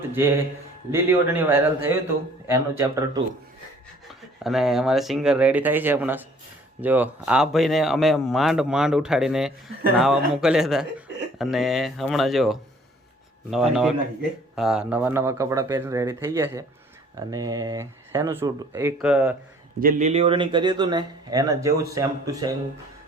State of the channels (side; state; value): both; normal; correlation 0.55